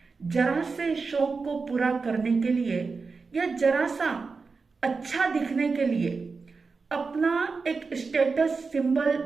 जरा से शौक को पूरा करने के लिए या जरा सा अच्छा दिखने के लिए, अपना एक स्टेटस सिंबल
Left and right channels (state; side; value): quieter; left; 4.5 dB